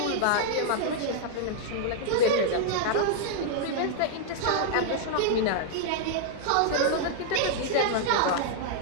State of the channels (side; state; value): both; different; correlation -0.01